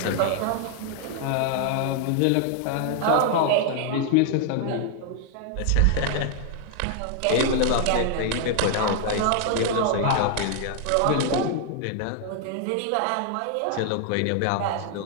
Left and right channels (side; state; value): both; different; correlation 0.00